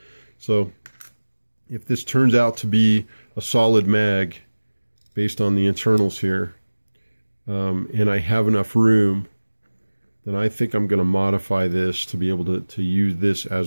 So if this turns out to be a solid mag based on the internals here, and I have enough room, then I think I'm going to modify this to be able to use this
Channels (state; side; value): inverted; both; correlation -1.00